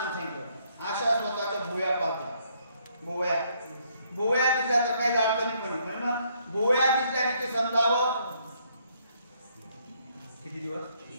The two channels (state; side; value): inverted; both; correlation -0.69